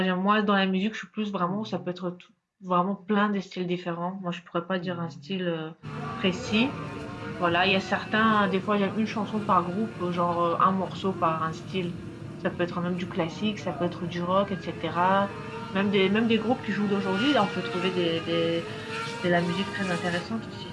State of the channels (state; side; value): identical; both; correlation 1.00